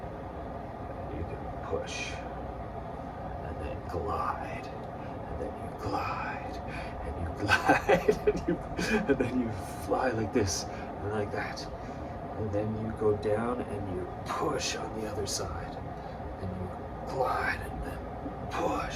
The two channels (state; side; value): identical; both; correlation 1.00